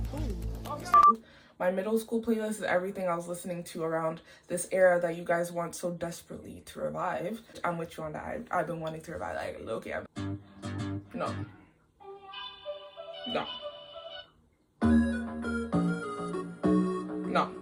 My middle school playlist is everything I was listening to around this era that you guys want so desperately to revive. I'm with you on that. I've been wanting to revive, like, low-key. No. No. No.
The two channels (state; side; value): identical; both; correlation 1.00